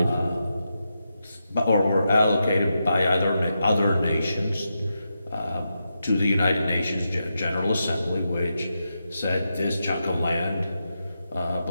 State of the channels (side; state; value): both; inverted; correlation -0.86